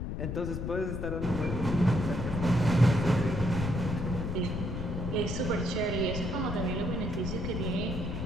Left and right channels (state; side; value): noise; left; rumble, 4 dB below the sound